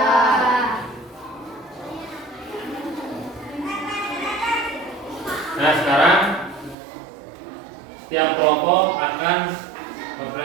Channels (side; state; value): left; drops out; at 6.8 s